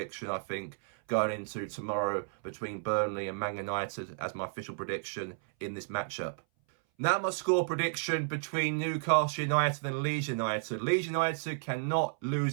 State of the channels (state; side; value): silent; left; 56 dB below the other